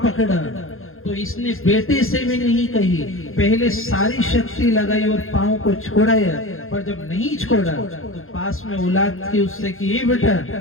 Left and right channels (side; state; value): right; late; 0.60 ms